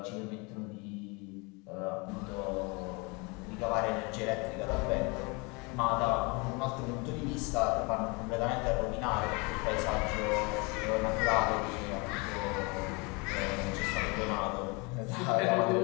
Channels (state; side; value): quieter; right; 29.0 dB